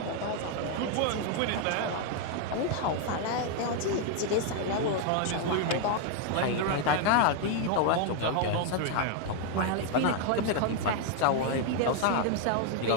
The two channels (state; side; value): different; both; correlation 0.00